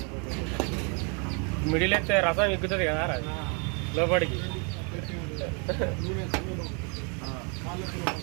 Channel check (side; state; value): left; quieter; 35.4 dB